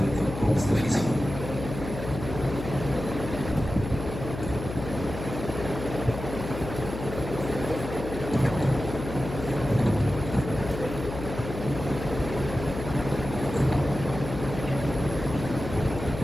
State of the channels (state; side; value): noise; left; hum, 8 dB below the sound